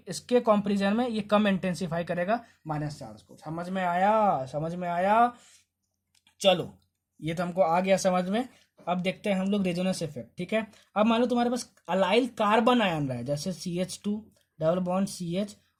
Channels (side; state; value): both; identical; correlation 1.00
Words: इसके कंपैरिजन में ये कम इंटेंसिफाई करेगा माइनस चार्ज को। समझ में आया, समझ में आया। चलो ये तो हमको आ गया समझ में। अब देखते हैं हम लोग रेजोनेंस इफेक्ट, ठीक है। अब मान लो तुम्हारे पास अलाइल कार्बन आयन रहा है, जैसे CH2 डबल बॉन्ड CH